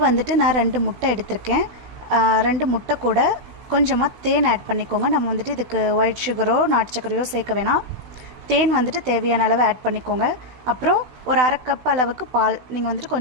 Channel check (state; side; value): late; left; 16 ms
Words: வந்துட்டு நான் 2 முட்டை எடுத்திருக்கேன். 2 முட்டை கூட கொஞ்சமாக தேன் ஆட் பண்ணிக்கோங்க. நம்ம வந்துட்டு இதுக்கு ஒயிட் சுகரோ நாட்டு சர்க்கரையோ சேர்க்க வேணாம். தேன் வந்துட்டு தேவையான அளவு ஆட் பண்ணிக்கோங்க. அப்புறம் ஒரு அரை கப் அளவுக்கு பால், நீங்கள் வந்துட்டு